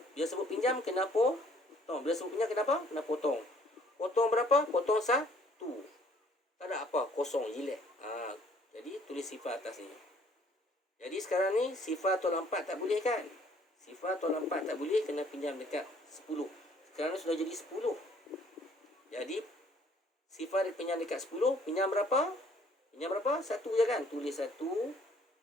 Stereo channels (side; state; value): both; normal; correlation 0.60